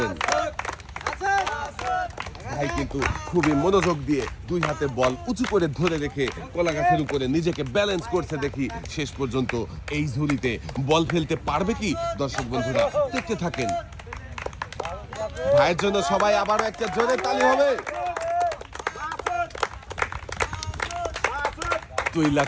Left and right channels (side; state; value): both; identical; correlation 1.00